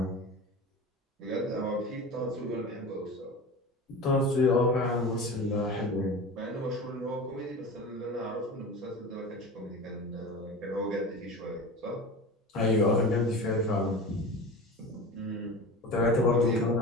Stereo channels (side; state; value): both; normal; correlation 0.32